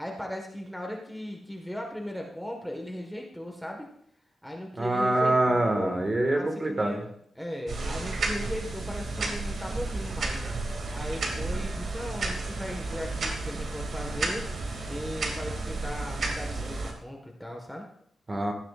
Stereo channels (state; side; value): normal; both; correlation 0.92